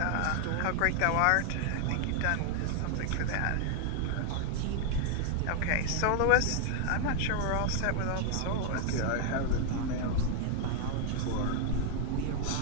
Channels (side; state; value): both; different; correlation 0.00